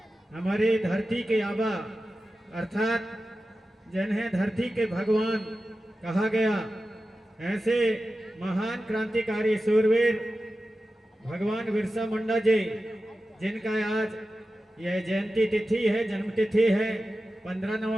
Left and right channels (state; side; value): normal; both; correlation 0.93